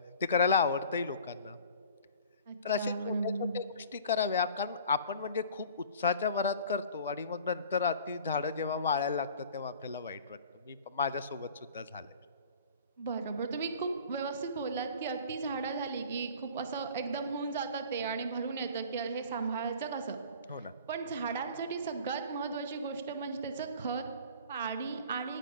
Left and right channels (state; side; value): inverted; both; correlation -0.46